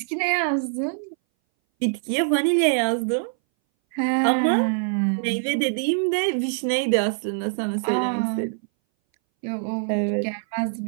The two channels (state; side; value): silent; left; 60 dB below the other